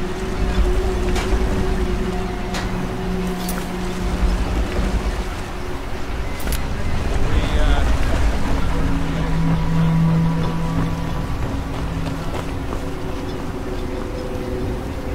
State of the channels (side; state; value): both; identical; correlation 1.00